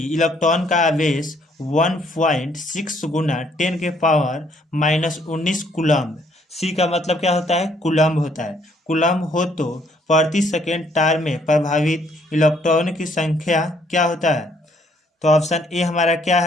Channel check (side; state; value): both; normal; correlation 0.66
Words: का आवेश 1.6 गुना 10 के पावर -19 कूलम्ब, सी का मतलब क्या होता है, कूलम्ब होता है, कूलम्ब हो तो प्रति सेकेंड तार में प्रभावित इलेक्ट्रॉन की संख्या क्या होता है। तो ऑप्शन ए हमारा क्या